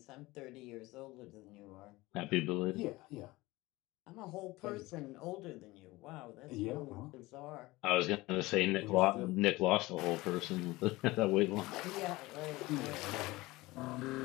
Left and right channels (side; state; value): right; quieter; 20.3 dB